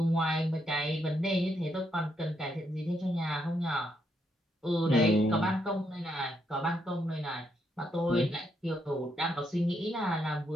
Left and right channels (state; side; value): normal; both; correlation 0.77